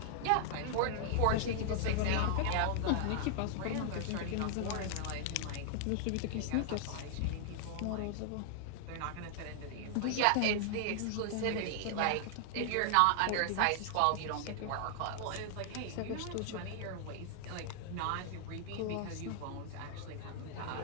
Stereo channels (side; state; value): both; different; correlation 0.00